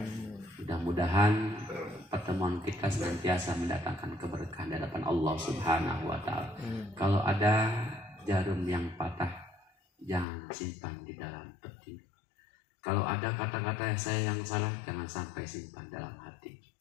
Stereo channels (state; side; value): drops out; right; at 10.2 s